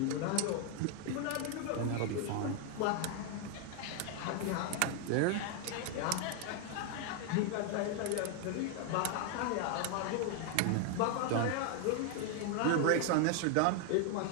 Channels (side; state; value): both; different; correlation 0.00